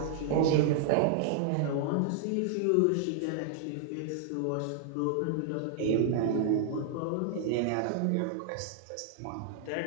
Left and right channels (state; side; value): different; both; correlation 0.00